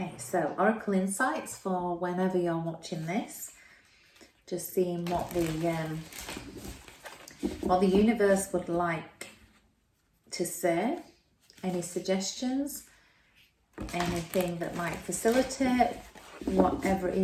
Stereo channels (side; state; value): both; identical; correlation 1.00